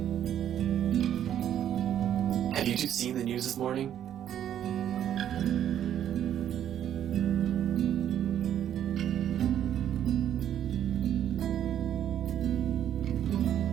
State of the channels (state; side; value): quieter; left; 10.3 dB